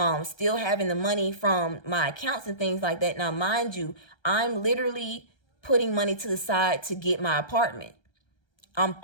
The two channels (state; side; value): late; right; 1.3 ms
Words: still having the money from my accounts and things like that. Now, mind you, I'm literally putting money to the side to get my apartment. I'm